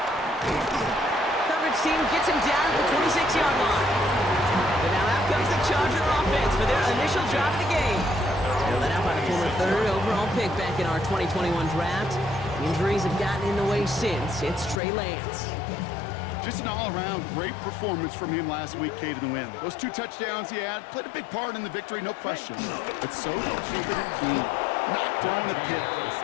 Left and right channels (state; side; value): drops out; right; at 14.8 s